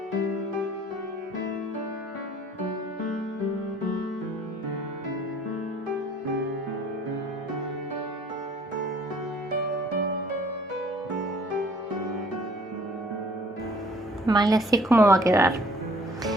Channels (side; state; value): both; normal; correlation 0.55